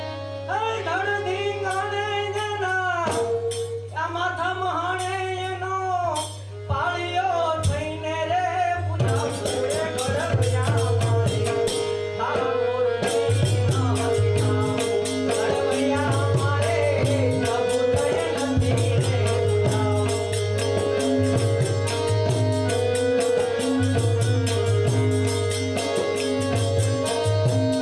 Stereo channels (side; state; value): both; identical; correlation 1.00